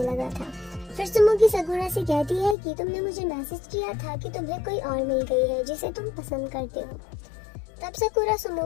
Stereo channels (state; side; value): drops out; right; at 2.6 s